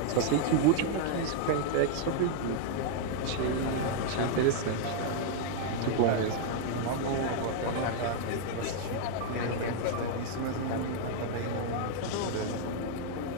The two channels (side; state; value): both; different; correlation -0.01